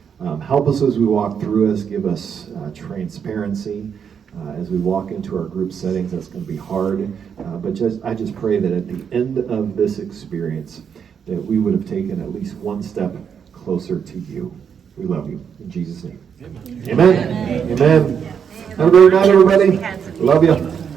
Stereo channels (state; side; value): quieter; left; 7.3 dB